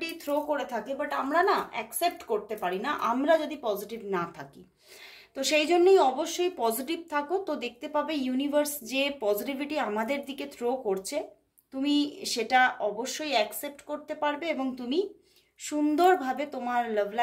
থ্রো করে থাকে, বাট আমরা না অ্যাকসেপ্ট করতে পারি না আমরা যদি পজিটিভ না থাকি। তো সেই জন্যই অবশ্যই পজিটিভ থাকো। তো দেখতে পাবে ইউনিভার্স যে পজিটিভিটি আমাদের দিকে থ্রো করছে, তুমি সেটা অবশ্যই অ্যাকসেপ্ট করতে পারবে এবং তুমি সুন্দরভাবে তোমার লাভ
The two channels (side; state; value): both; identical; correlation 1.00